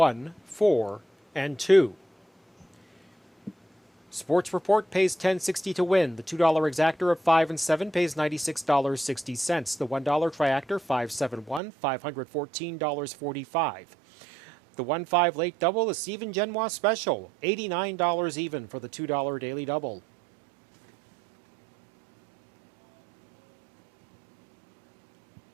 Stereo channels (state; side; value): drops out; left; at 11.6 s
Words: 4, and 2. Sports Report pays $10.60 to win. The $2 exactor of 5 and 7 pays $96.60. The $1 triactor 571, $514.45. The 1-5 late double, the Stephen Genois special, $89 even for the $2 daily double.